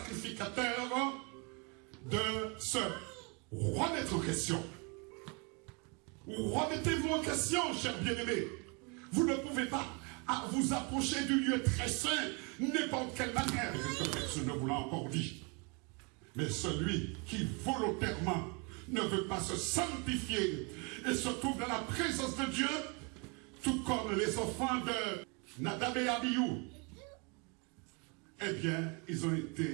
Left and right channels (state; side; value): quieter; left; 32.2 dB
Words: de se remettre en question. Remettez-vous en question, chers bien-aimés. Vous ne pouvez pas vous approcher du lieu très saint n'importe quelle manière. Et que personne ne vous l'a encore dit. Mais celui qui volontairement ne veut pas se sanctifier et se trouve dans la présence de Dieu, tout comme les enfants de Nadab et Abihu, eh bien, ils ont